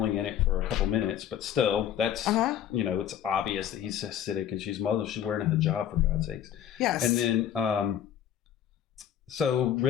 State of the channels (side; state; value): right; quieter; 10.1 dB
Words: in it for a couple minutes, but still, that's it's obvious that he's Hasidic and she's Muslim. She's wearing a hijab, for God's sakes. Yes. And then, so